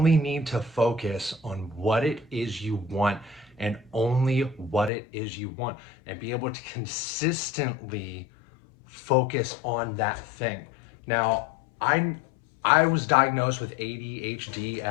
need to focus on what it is you want and only what it is you want, and be able to consistently focus on that thing. Now, I I was diagnosed with ADHD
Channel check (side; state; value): right; drops out; at 4.9 s